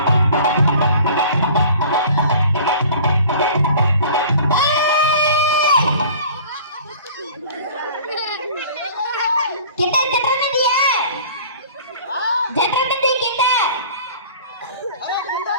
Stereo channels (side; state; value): both; inverted; correlation -0.46